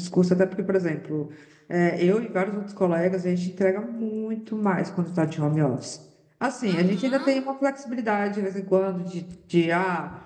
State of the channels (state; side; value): identical; both; correlation 1.00